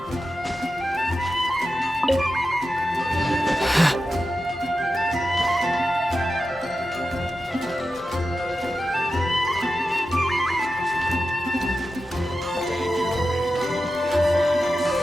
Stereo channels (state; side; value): normal; both; correlation 0.91